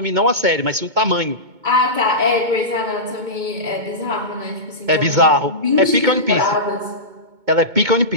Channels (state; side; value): late; left; 2.2 ms